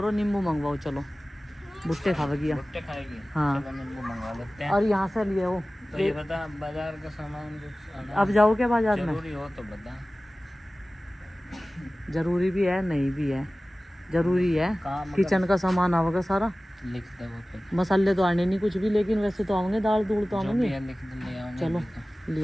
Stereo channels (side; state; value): both; normal; correlation 0.97